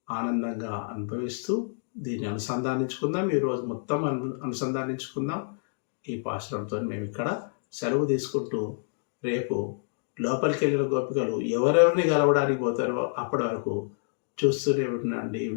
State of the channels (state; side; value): silent; right; digital silence